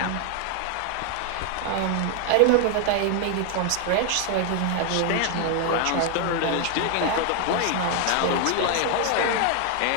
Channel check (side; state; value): both; different; correlation 0.00